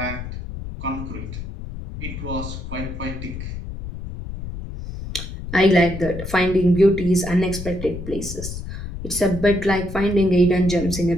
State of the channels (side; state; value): left; noise; rumble, 8 dB below the sound